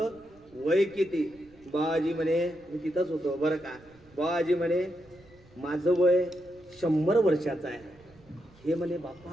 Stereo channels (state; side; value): noise; right; rumble, 27 dB below the sound